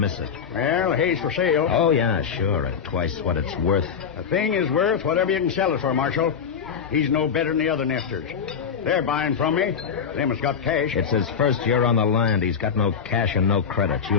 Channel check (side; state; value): right; quieter; 6.8 dB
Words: it. Well, hay's for sale. Oh, yeah, sure, at twice what it's worth. A thing is worth whatever you can sell it for, Marshal. He's no better than the other nefters. They're buying from me. Them has got cash. It's his first year on the land. He's got no cash and no credit.